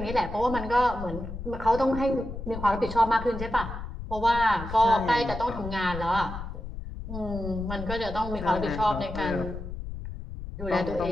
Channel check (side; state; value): left; noise; rumble, 8 dB below the sound